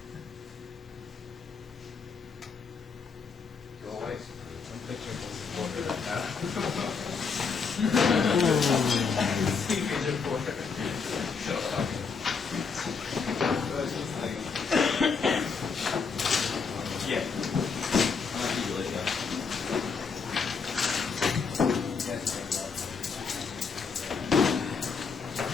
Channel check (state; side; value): quieter; right; 5.3 dB